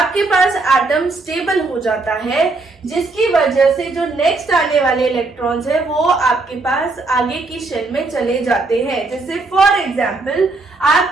पास एटम स्टेबल हो जाता है, जिसकी वजह से जो नेक्स्ट आने वाले इलेक्ट्रॉन्स है वो आपके पास आगे की शेल में चले जाते हैं। जैसे फॉर एग्जांपल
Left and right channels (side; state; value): left; quieter; 3.5 dB